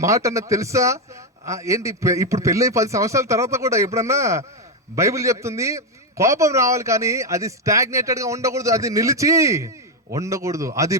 మాట అన్నది తెలుసా? ఏంటి ఇప్పుడు పెళ్ళి 10 సంవత్సరాల తర్వాత కూడా ఎప్పుడన్నా బైబిల్ చెప్తుంది కోపం రావాలి, కానీ అది స్టాగ్నేటెడ్ గా ఉండకూడదు, అది నిలిచి ఉండకూడదు. అది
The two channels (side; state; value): both; normal; correlation 0.06